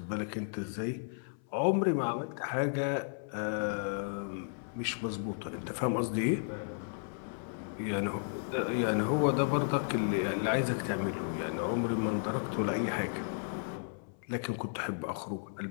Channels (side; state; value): right; silent; 55 dB below the other